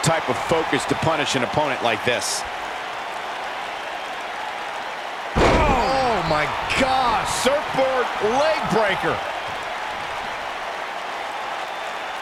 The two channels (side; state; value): both; identical; correlation 1.00